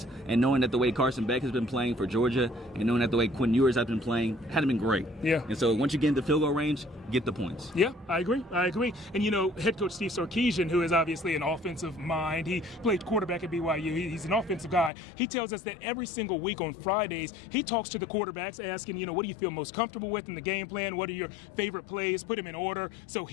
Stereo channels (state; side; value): drops out; right; at 14.9 s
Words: and knowing that the way Carson Beck has been playing for Georgia and knowing that the way Quinn Ewers has been playing hadn't been great. Yeah. And so once you get into field goal range, get the points. Yeah, I agree. And, head coach Steve Sarkisian, who is obviously an offensive mind, he played quarterback at BYU. He's an offensive guy. He tells us that every single week on Fridays, he talks to the quarterbacks asking, what do you feel most comfortable with in the game plan? What are your favorite plays? Put them in order. So